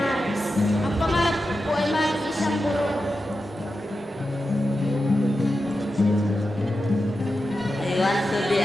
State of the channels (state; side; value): normal; both; correlation 0.90